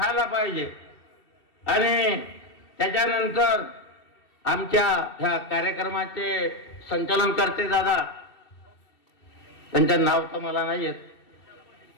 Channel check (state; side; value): late; right; 2.7 ms